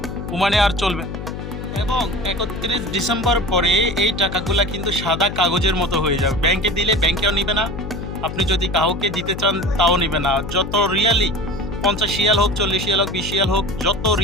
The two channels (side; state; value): left; noise; hum, 8 dB below the sound